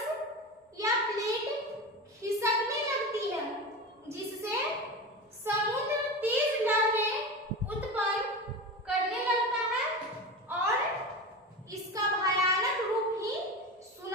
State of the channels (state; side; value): normal; both; correlation 0.25